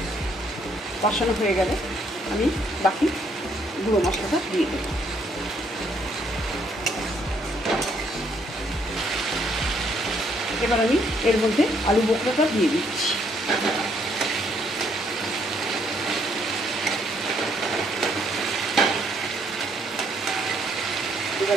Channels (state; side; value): normal; both; correlation 0.69